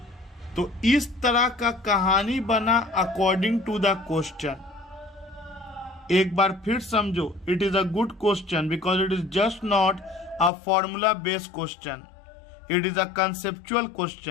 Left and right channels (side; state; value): right; drops out; at 10.5 s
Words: तो इस तरह का कहानी बना अकॉर्डिंग टू द क्वेश्चन. एक बार फिर समझो, it is a good question because it is just not a formula based question, it is a conceptual